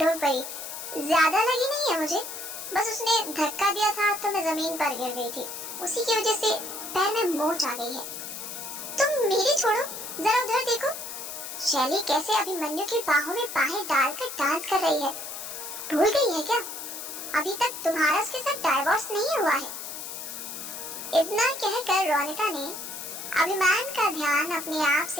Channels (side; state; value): left; noise; hiss, 8 dB below the sound